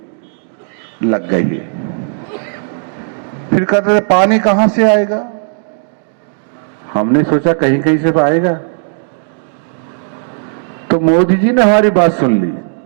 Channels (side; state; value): left; silent; digital silence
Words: लग गई है। फिर कहते थे पानी कहां से आएगा, हमने सोचा कहीं कहीं से तो आएगा, तो मोदी जी ने हमारी बात सुन ली